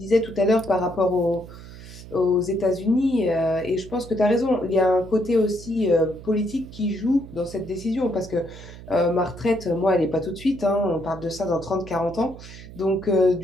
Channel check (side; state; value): right; noise; hum, 16 dB below the sound